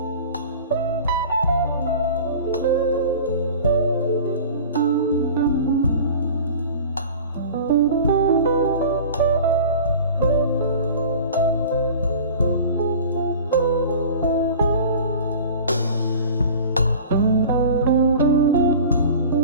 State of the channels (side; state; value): both; inverted; correlation -0.39